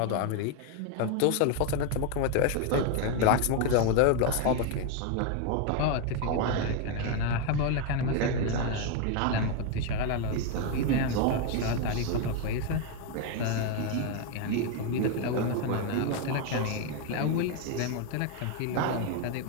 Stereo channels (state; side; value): different; both; correlation 0.01